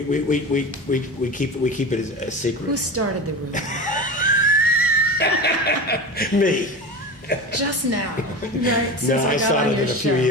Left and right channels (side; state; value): both; normal; correlation 0.28